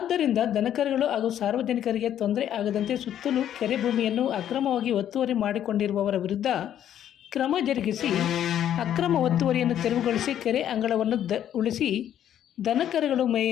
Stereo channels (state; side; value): quieter; right; 10.6 dB